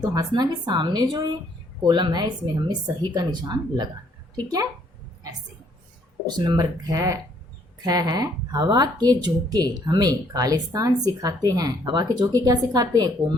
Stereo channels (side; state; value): both; normal; correlation 0.66